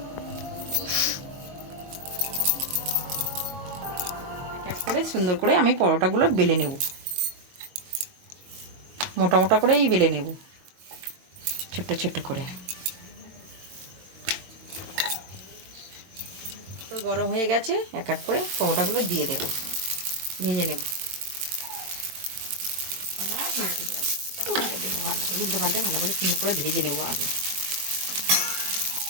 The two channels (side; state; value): left; late; 22 ms